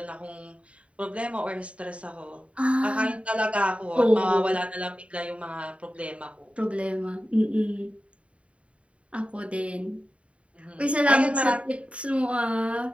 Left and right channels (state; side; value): late; left; 0.062 ms